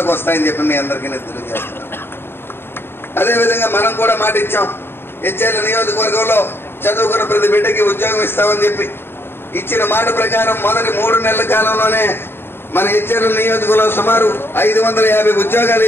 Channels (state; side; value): late; right; 0.11 ms